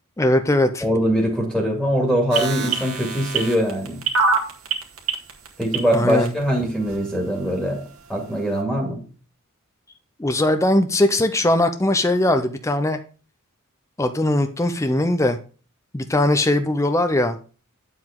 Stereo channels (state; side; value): normal; both; correlation 0.65